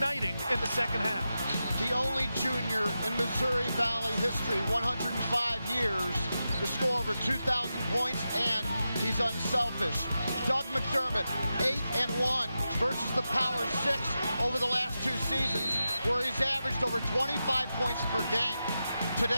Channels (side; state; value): both; inverted; correlation -0.90